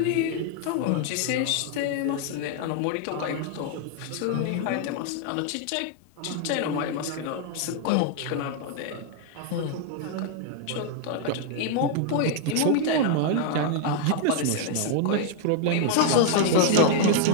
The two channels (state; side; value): different; both; correlation 0.00